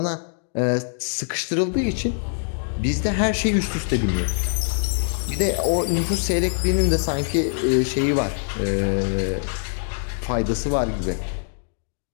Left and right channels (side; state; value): right; silent; digital silence